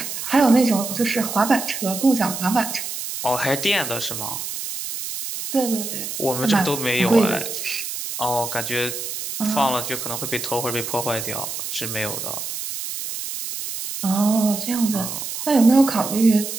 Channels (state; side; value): noise; right; hiss, 6 dB below the sound